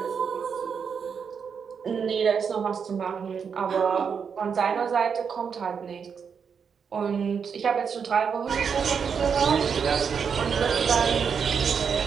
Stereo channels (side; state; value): left; quieter; 6.5 dB